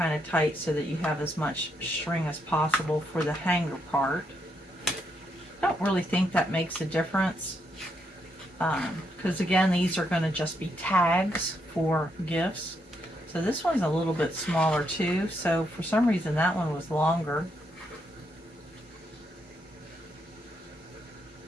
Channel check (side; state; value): both; normal; correlation 0.78